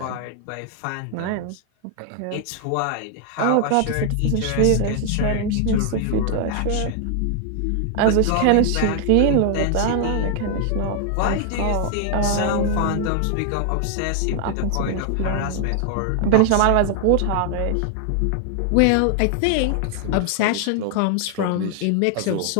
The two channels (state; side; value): different; both; correlation 0.00